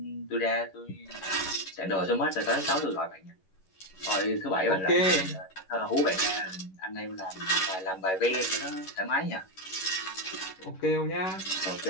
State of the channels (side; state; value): right; late; 11 ms